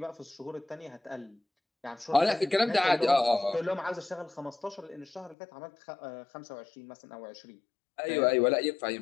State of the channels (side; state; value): right; drops out; at 5.4 s